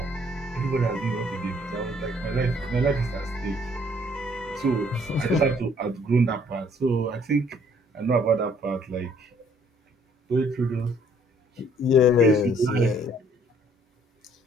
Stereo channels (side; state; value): both; normal; correlation 0.62